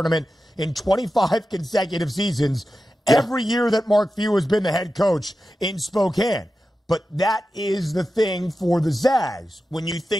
in 25 consecutive seasons, every year that Mark Few has been the head coach in Spokane. But that is the thing for the Zags. When you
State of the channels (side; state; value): both; normal; correlation 0.92